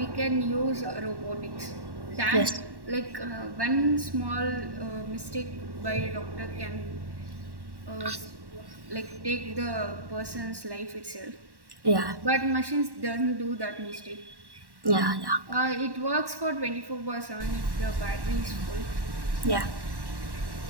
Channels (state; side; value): late; left; 1.1 ms